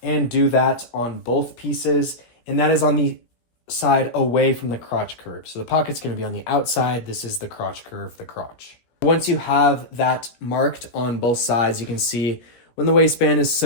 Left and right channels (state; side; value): late; right; 17 ms